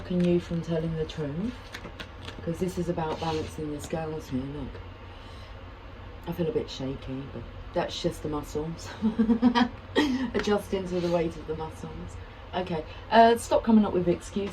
you from telling the truth? Because this is about balancing the scales here. Look, I feel a bit shaky, but that's just the muscles. Adjusting to the weight of the muscles. Okay, stop coming up with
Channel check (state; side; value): identical; both; correlation 1.00